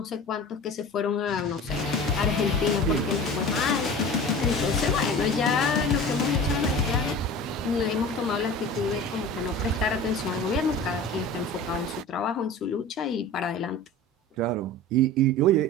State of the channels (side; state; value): both; normal; correlation 0.37